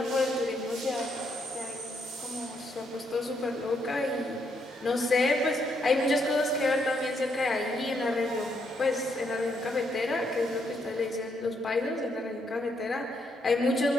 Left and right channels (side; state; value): both; normal; correlation 0.75